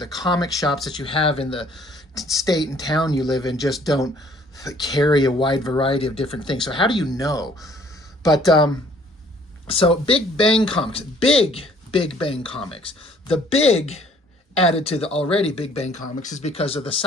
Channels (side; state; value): both; normal; correlation 0.59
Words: comic shops that you have in the state and town you live in just don't carry a wide variety of different things. So how do you know? But so Big Bang Comics, Big Bang Comics. The big added to the already Big Bang Comics is because of the